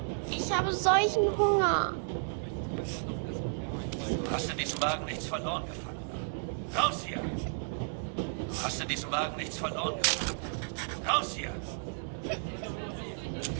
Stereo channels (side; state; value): left; silent; digital silence